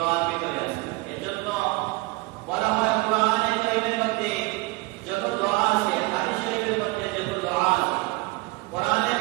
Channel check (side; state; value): left; quieter; 23.0 dB